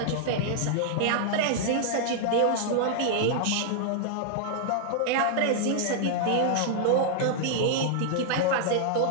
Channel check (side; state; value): both; different; correlation -0.01